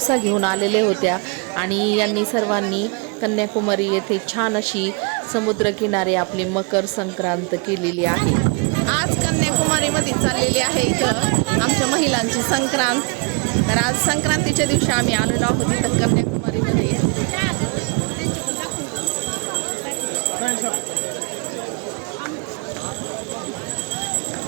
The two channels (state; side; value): quieter; left; 32.1 dB